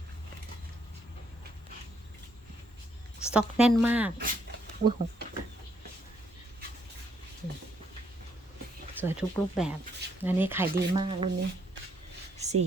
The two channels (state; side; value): normal; both; correlation 0.72